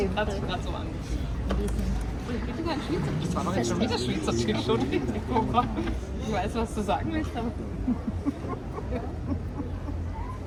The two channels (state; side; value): identical; both; correlation 1.00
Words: gerade so angefühlt. Ich bitte gar nicht Schweizerdeutsch. Das war doch jetzt schon wieder Schweizerdeutsch. Entschuldigung. Ich weiß, was du sagen willst, aber.